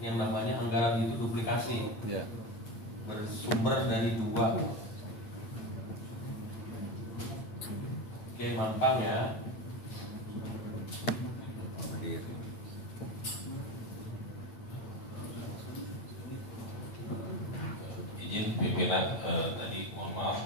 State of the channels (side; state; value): right; late; 8.8 ms